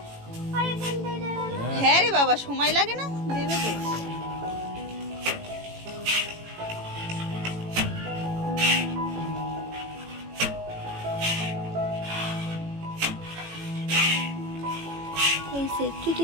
আর এখানটায় দেবে না। হ্যাঁ রে বাবা, সময় লাগে না, দেবে তো। এই সেফটি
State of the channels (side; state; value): left; late; 18 ms